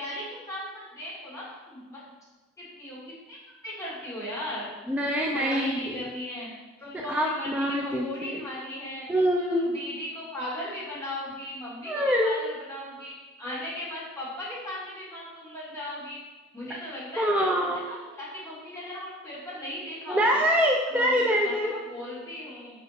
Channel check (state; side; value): normal; both; correlation 0.48